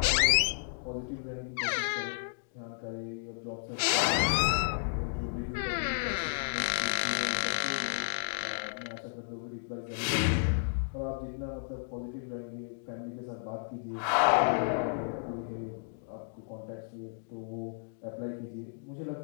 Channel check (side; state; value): right; silent; digital silence